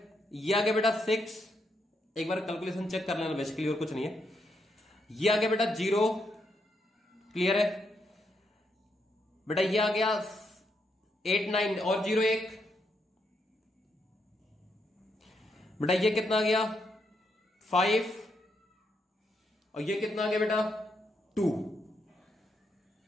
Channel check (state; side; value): normal; both; correlation 0.79